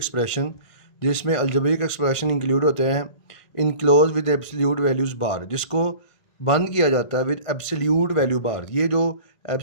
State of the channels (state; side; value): late; right; 1.5 ms